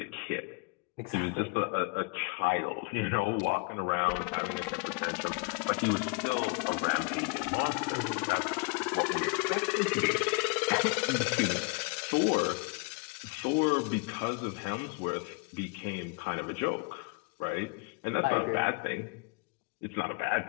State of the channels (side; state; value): right; quieter; 32.5 dB